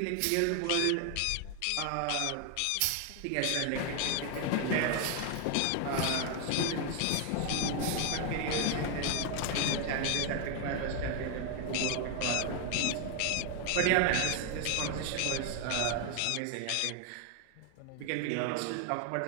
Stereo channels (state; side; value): different; both; correlation 0.01